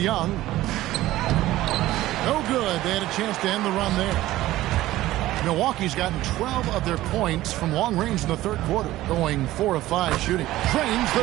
No good. They had a chance to end the run there. Milwaukee's gotten 12 of their points from long range in the third quarter, going 4 of 5 shooting. Trains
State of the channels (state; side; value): quieter; left; 15.9 dB